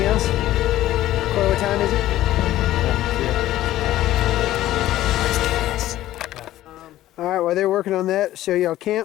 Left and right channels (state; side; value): quieter; right; 14.4 dB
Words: else? Corey, what time is it? Alright, while they're working on that, show y'all